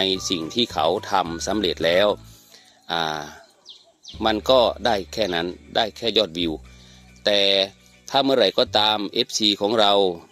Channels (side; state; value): both; identical; correlation 1.00